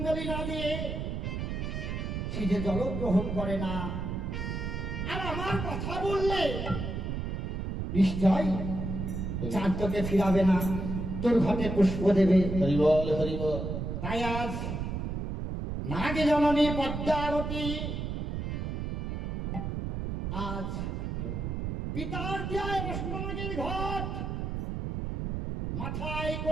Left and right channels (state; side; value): noise; right; rumble, 3 dB below the sound